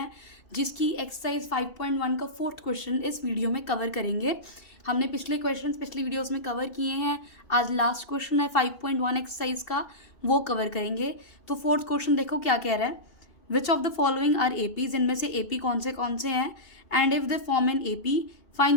जिसकी एक्सरसाइज 5.1 का फोर्थ क्वेश्चन इस वीडियो में कवर करेंगे। हमने पिछले क्वेश्चंस पिछली वीडियोस में कवर किए हैं। आज लास्ट क्वेश्चन है 5.1 एक्सरसाइज का, वो कवर करेंगे। तो फोर्थ क्वेश्चन देखो क्या कह रहा है। Which of the following are APs, इनमें से एपी कौन से हैं। And if they form an AP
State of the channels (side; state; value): right; late; 2.8 ms